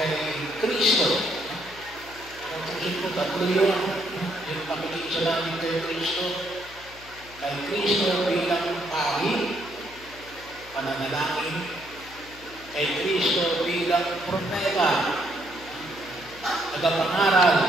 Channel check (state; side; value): noise; left; hum, 21 dB below the sound